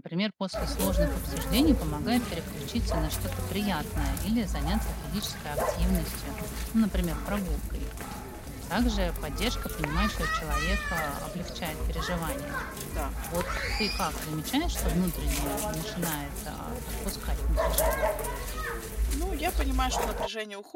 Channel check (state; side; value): identical; both; correlation 1.00